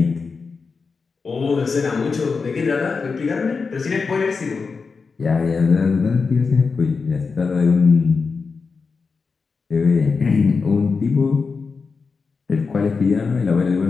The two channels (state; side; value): quieter; right; 4.8 dB